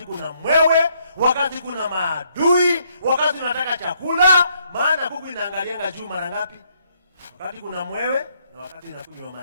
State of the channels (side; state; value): both; inverted; correlation -0.71